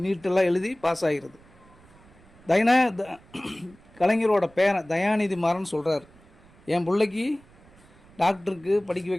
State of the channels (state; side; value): noise; right; rumble, 27 dB below the sound